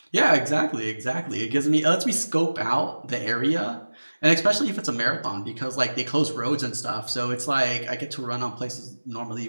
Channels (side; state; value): both; inverted; correlation -1.00